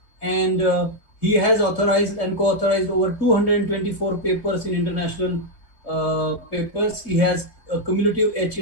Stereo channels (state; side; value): late; right; 3.0 ms